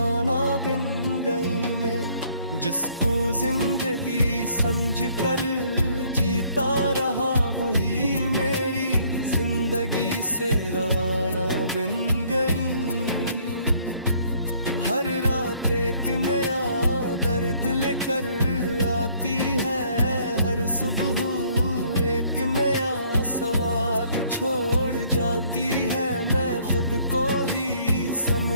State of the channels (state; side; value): inverted; both; correlation -0.62